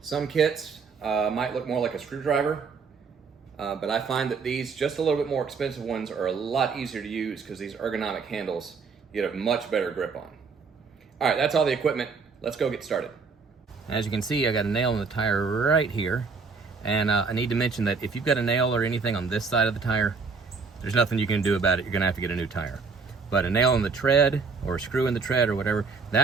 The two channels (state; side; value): quieter; left; 4.9 dB